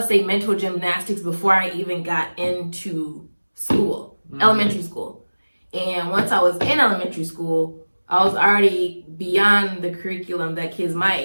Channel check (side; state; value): both; inverted; correlation -1.00